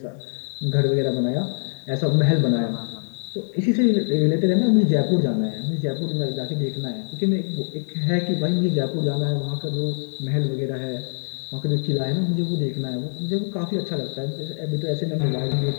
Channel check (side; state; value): right; silent; digital silence